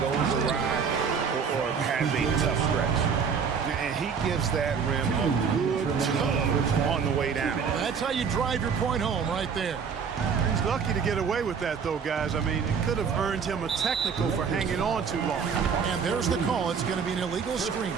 goes awry or has a tough stretch. And he gives that rim a good tug on the way down. That's how you drive your point home right there. He's lucky to get away with that, though, guys. I mean, it could have earned him a technical for hanging on too long. And there's the call. It's going to be an illegal screen.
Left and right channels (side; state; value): left; quieter; 6.3 dB